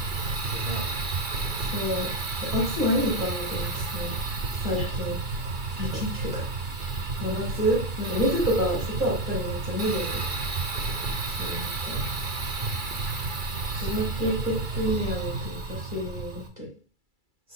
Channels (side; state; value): left; late; 2.3 ms